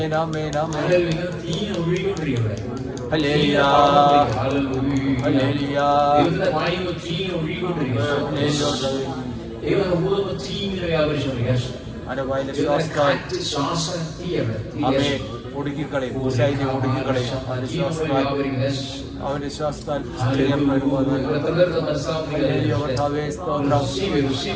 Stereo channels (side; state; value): both; identical; correlation 1.00